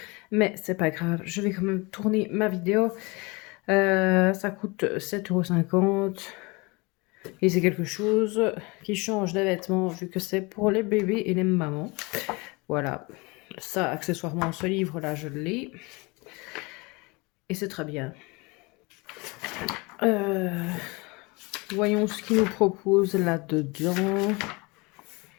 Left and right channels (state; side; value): quieter; right; 26.5 dB